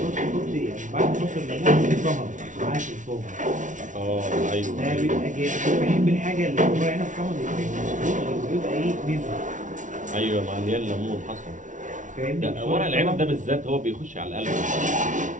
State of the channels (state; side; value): late; left; 0.37 ms